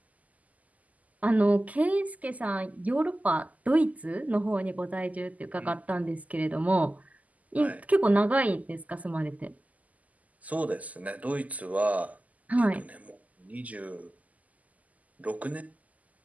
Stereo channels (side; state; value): left; late; 0.076 ms